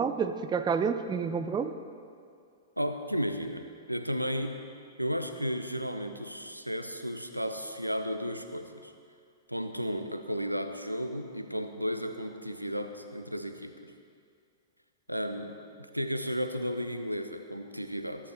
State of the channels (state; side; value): inverted; both; correlation -0.51